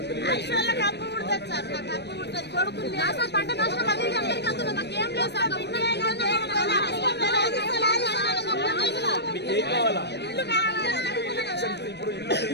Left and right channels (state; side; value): late; right; 0.49 ms